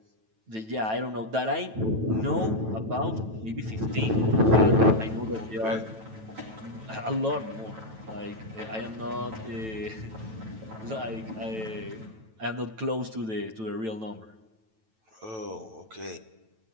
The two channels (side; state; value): left; late; 9.1 ms